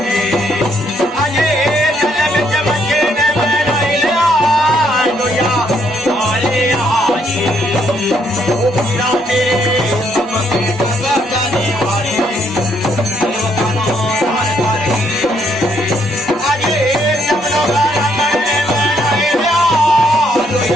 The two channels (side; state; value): both; normal; correlation 0.71